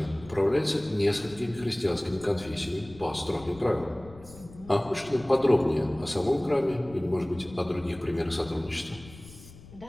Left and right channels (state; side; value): noise; left; rumble, 19 dB below the sound